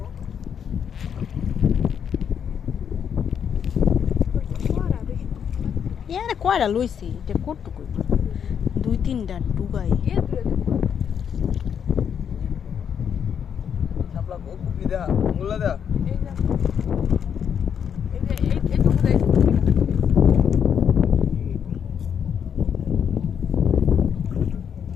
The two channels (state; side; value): quieter; right; 7.9 dB